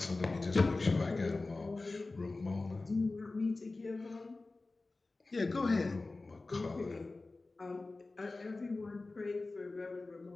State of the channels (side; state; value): right; quieter; 3.4 dB